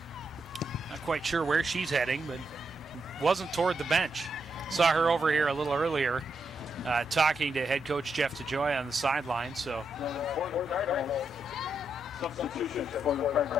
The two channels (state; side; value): normal; both; correlation 0.82